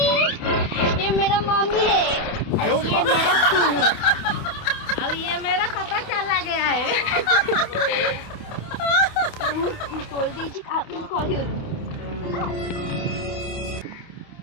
ये मेरा मम्मी है। अब ये मेरा पापा चला गया है। खोल दीजिए आप खोल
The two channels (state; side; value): late; right; 28 ms